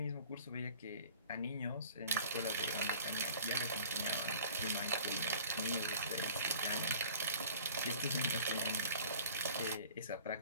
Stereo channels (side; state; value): both; inverted; correlation -0.47